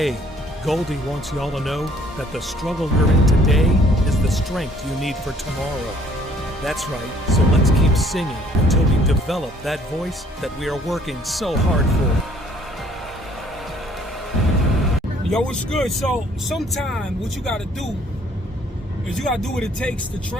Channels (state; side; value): normal; both; correlation 0.60